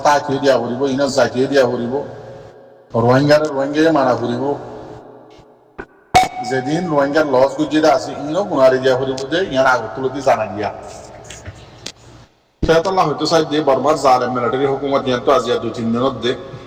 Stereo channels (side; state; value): both; identical; correlation 1.00